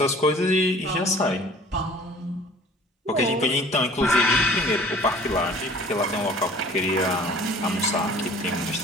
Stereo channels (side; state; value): both; normal; correlation 0.49